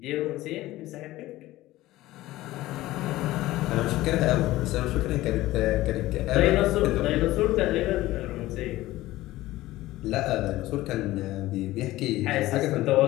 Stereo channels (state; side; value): quieter; right; 16.9 dB